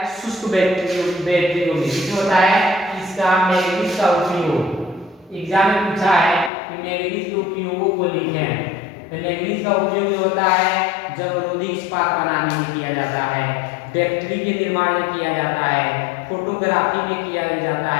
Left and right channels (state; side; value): drops out; right; at 6.5 s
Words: शुष्क बैटरियों में। किसमें होता है? इसका मैंगनीज का उपयोग। एग्जाम में पूछा है कि मैंगनीज के उपयोगों को लिखें। तो मैंगनीज का उपयोग जो होता है जंगरोधी इस्पात बनाने में किया जाता है, बैटरी के निर्माण में किया जाता है, फोटोग्राफी में किया जाता